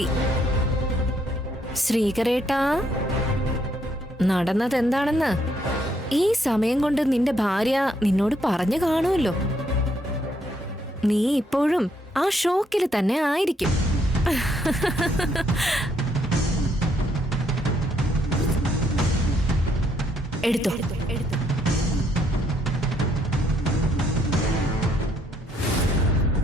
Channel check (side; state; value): both; normal; correlation 0.71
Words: ശ്രീകരേട്ടാ, നടന്നത് എന്താണെന്ന് ഈ സമയം കൊണ്ട് നിന്റെ ഭാര്യ നിന്നോട് പറഞ്ഞു കാണുമല്ലോ. നീ ഇപ്പോഴും ആ ഷോക്കിൽ തന്നെ ആയിരിക്കും. എടുത്തോ.